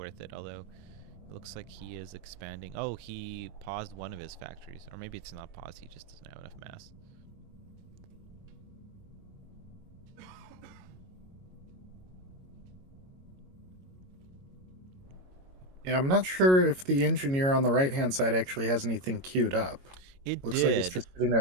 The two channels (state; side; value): late; left; 22 ms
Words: it. Although it looks like he is expanding. Oh, he paused one of his factories, or maybe it's not paused. He just doesn't have enough mass. Yeah, I'm not sure if the engineer on the right-hand side actually has anything queued up. It Looks like it's did. just sitting